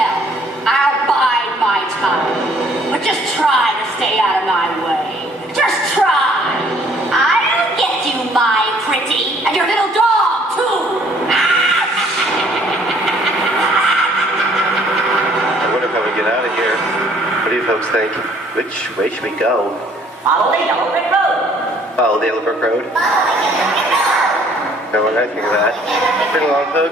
I'll bide my time. But just try to stay out of my way. Just try. I'll get you, my pretty. And your little dog, too. I wonder how we get out of here. What do you folks think? Which way should we go? Follow the yellow brick road. Follow the yellow brick road? No, I think of that. Bring along,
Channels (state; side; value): normal; both; correlation 0.60